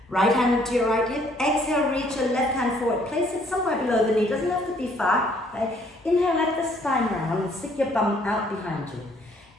Right hand to your right hip. Exhale, reach your left hand forward. Place it somewhere below the knee. Doesn't have to be far. Right? Inhale, let the spine round and stick your bum out behind you.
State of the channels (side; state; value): both; normal; correlation 0.64